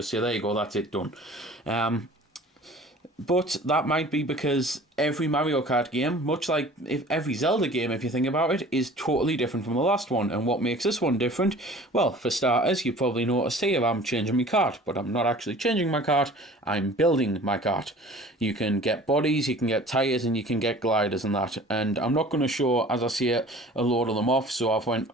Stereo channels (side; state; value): both; normal; correlation 0.46